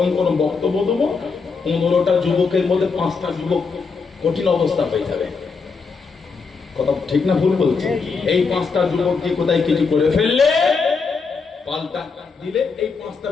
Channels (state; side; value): quieter; right; 4.9 dB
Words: গরম বক্তব্য দেবো, 15টা যুবকের মধ্যে 5টা যুবক কঠিন অবস্থা হয়ে যাবে। কথা ঠিক না ভুল বলছি? এই 5টা যুবক কি কোথায় কিছু করে ফেললে পাল্টা দিলে এই 5টা